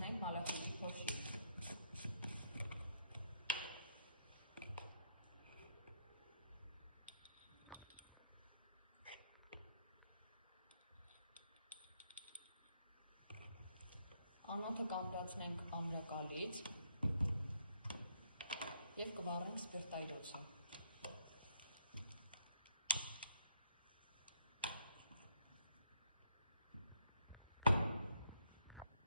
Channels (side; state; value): both; inverted; correlation -0.71